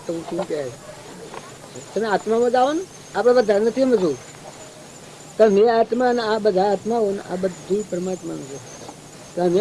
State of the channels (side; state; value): both; identical; correlation 1.00